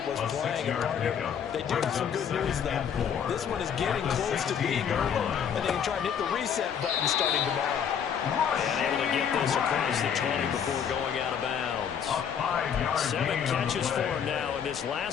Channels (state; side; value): quieter; right; 7.9 dB